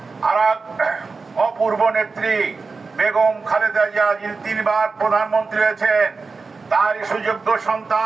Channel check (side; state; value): left; quieter; 4.3 dB